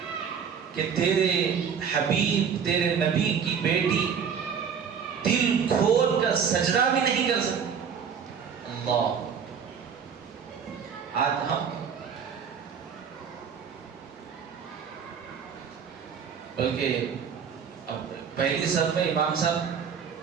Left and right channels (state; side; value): quieter; left; 7.0 dB